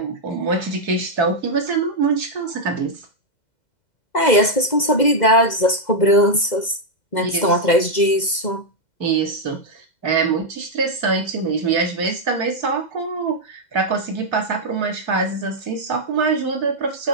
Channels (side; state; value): right; late; 2.0 ms